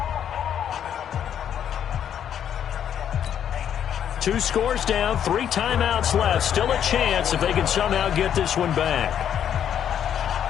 Two scores down, 3 timeouts left. Still a chance if they can somehow get this one back.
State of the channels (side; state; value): right; quieter; 9.3 dB